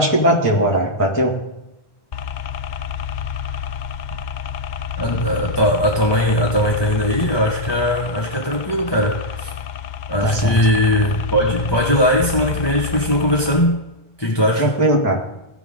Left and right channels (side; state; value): right; late; 1.2 ms